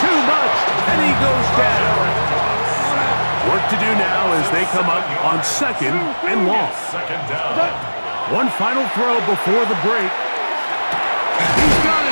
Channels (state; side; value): inverted; both; correlation -1.00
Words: too much, and he goes down. Work to do now as they come up on 2nd and long. 2nd down. One final throw before the break. He's got